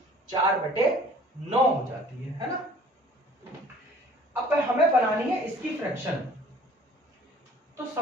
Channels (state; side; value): normal; both; correlation 0.52